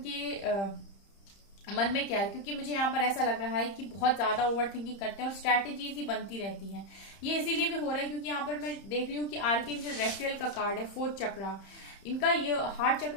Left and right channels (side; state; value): right; late; 30 ms